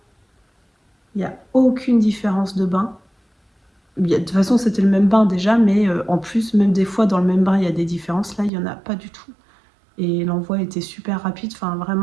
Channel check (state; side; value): drops out; left; at 8.5 s